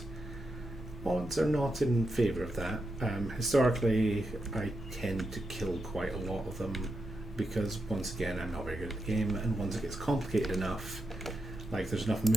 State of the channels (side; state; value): both; normal; correlation 0.86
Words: odds are not in favour of that. Historically, I tend to kill quite a lot of them because, once again, I'm not very good at the game, and once it gets complicated enough, like there's enough